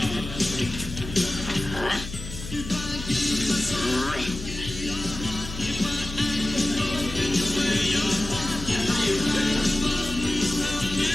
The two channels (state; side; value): noise; left; hum, 10 dB below the sound